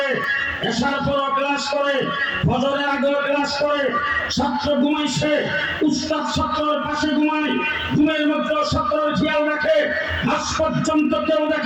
এশার পরও ক্লাস করে, ফজরের আগেও ক্লাস করে। ছাত্র ঘুমাইছে, উস্তাদ ছাত্রের পাশে ঘুমায়, ঘুমের মধ্যে ছাত্রের খেয়াল রাখে। আজ পর্যন্ত কেউ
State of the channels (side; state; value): both; identical; correlation 1.00